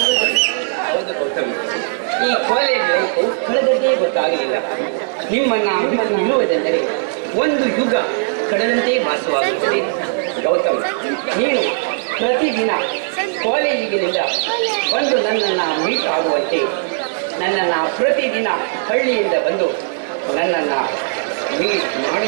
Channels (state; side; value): silent; left; digital silence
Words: ಹೌದು ಗೌತಮ್, ಈ ಕಾಲೇಜ್ ಲೈಫು ಕಳೆದದ್ದೇ ಗೊತ್ತಾಗಲಿಲ್ಲ. ನಿಮ್ಮನ್ನ ಬಿಟ್ಟು ನಿಲ್ಲುವುದೆಂದರೆ ಒಂದು ಯುಗ ಕಳೆದಂತೆ ಭಾಸವಾಗುತ್ತದೆ. ಗೌತಮ್, ನೀನು ಪ್ರತಿದಿನ ಕಾಲೇಜಿಗಿನಿಂದ ಬಂದು ನನ್ನನ್ನು ಮೀಟ್ ಆಗುವಂತೆ, ನನ್ನನ್ನು ಪ್ರತಿದಿನ ಹಳ್ಳಿಯಿಂದ ಬಂದು ನನ್ನನ್ನು ಮೀಟ್